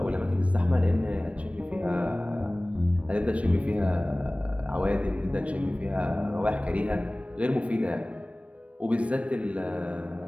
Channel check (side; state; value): left; late; 0.063 ms